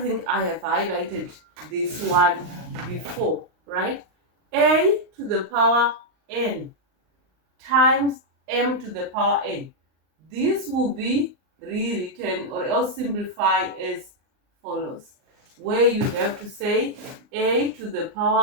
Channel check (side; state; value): left; late; 39 ms